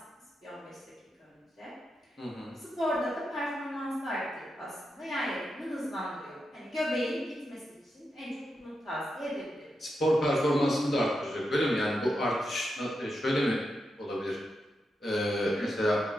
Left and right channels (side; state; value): both; normal; correlation 0.87